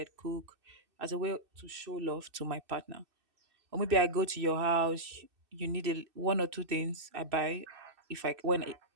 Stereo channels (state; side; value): late; left; 2.6 ms